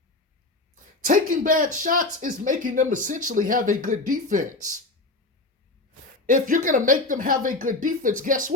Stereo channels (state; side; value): quieter; right; 3.0 dB